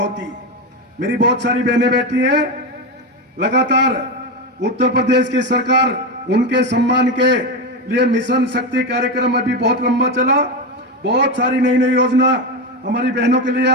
मेरी बहुत सारी बहनें बैठी हैं, लगातार उत्तर प्रदेश की सरकार उनके सम्मान के लिए मिशन शक्ति कार्यक्रम अभी बहुत लंबा चला। बहुत सारी नई नई योजना हमारी बहनों के लिए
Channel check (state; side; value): normal; both; correlation 0.14